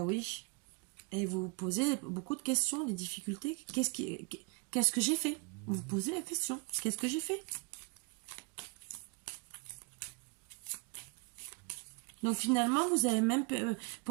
oui. Et vous vous posez beaucoup de questions, des difficultés. Qu'est-ce que j'ai fait? Vous vous posez la question. Qu'est-ce que j'ai fait? Donc finalement, vous avez même,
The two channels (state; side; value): quieter; left; 32.8 dB